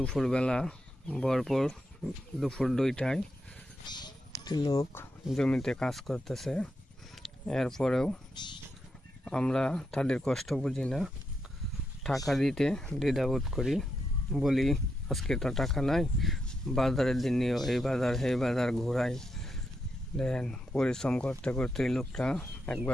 ভরপুর দুপুর 2টায় লোক জমিতে কাজ করতেছে, এরপরেও আমরা তাদের কষ্ট বুঝি না, টাকা দিতে দ্বিধাবোধ করি, বলি আজকে তো টাকা নাই, বাজারের দিন নিয়েও এই বাজার সেই বাজার ঘোরাই। দেখেন পরিশ্রম করতে করতে এই লোকটা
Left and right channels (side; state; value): both; normal; correlation 0.84